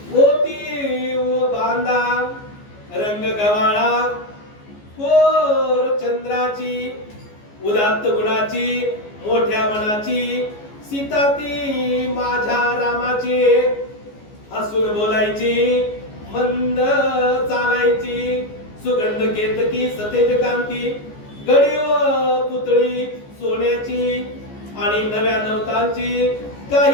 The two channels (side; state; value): right; late; 14 ms